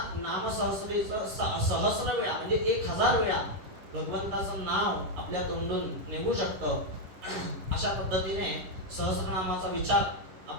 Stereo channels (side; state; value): left; late; 10 ms